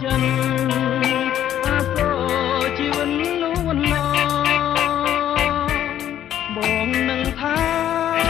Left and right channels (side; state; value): right; quieter; 11.1 dB